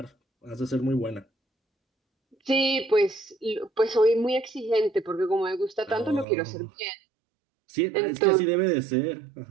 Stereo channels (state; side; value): drops out; left; at 6.2 s